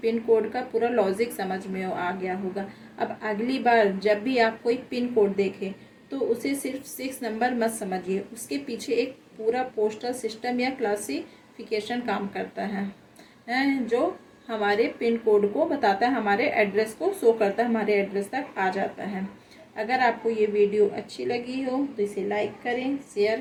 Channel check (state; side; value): identical; both; correlation 1.00